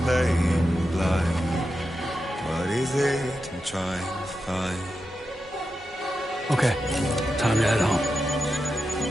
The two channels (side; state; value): both; normal; correlation 0.89